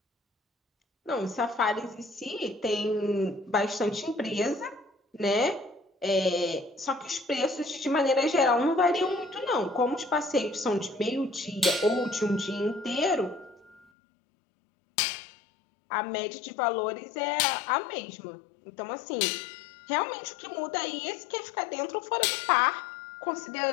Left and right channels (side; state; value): right; drops out; at 13.9 s